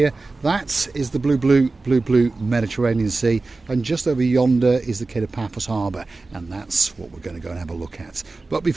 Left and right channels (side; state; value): left; quieter; 3.5 dB